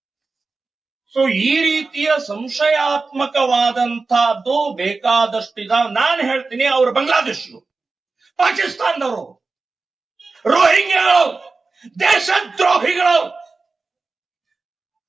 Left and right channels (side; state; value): left; quieter; 4.0 dB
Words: ಸೊ ಈ ರೀತಿಯ ಸಂಶಯಾತ್ಮಕವಾದಂತಹದ್ದು ಬೇಕಾದಷ್ಟು ಇದಾವೆ. ನಾನು ಹೇಳ್ತೀನಿ, ಅವರು ಬಾಂಗ್ಲಾದೇಶರು, ಪಾಕಿಸ್ತಾನದವರು, ರೋಹಿಂಗ್ಯಾಗಳು, ದೇಶದ್ರೋಹಿಗಳು.